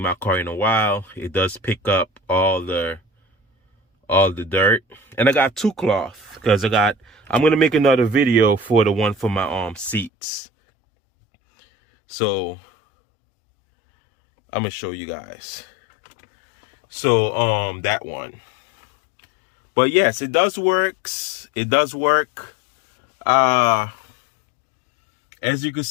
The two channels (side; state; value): right; drops out; at 10.1 s